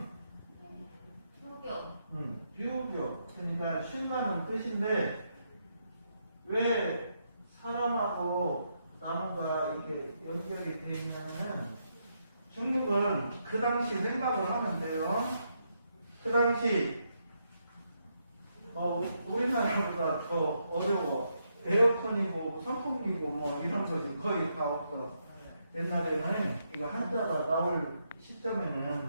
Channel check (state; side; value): inverted; both; correlation -0.79